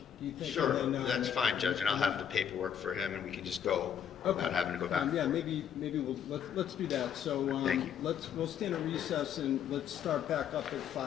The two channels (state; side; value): quieter; right; 8.7 dB